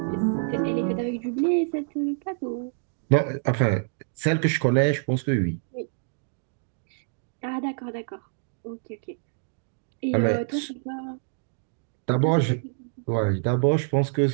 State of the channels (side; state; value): left; silent; digital silence